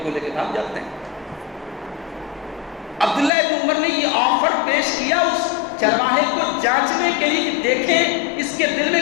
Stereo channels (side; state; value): right; drops out; at 3.3 s